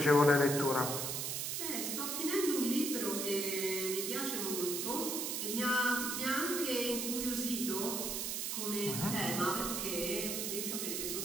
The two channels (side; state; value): right; noise; hiss, 2 dB below the sound